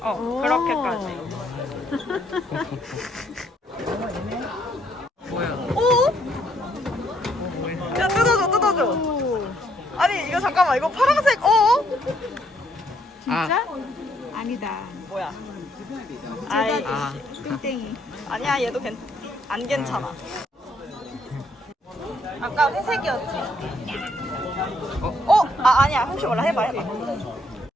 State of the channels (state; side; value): normal; both; correlation 0.70